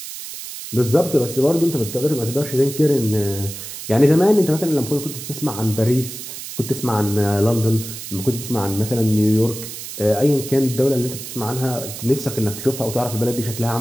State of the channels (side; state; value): right; noise; hiss, 10 dB below the sound